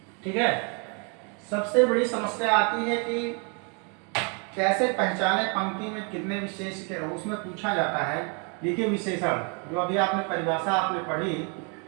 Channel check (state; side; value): quieter; left; 36.1 dB